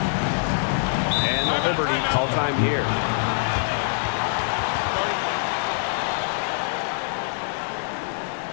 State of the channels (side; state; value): right; silent; 62 dB below the other